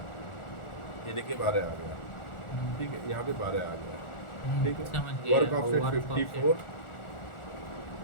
ये देखिए 12 आ गया, ठीक है। यहाँ पे 12 आ गया, ठीक है। वर्क ऑफसेट 54,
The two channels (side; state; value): right; late; 1.4 ms